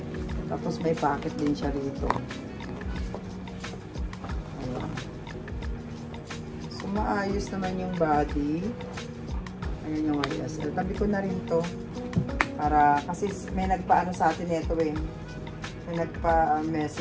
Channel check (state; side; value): identical; both; correlation 1.00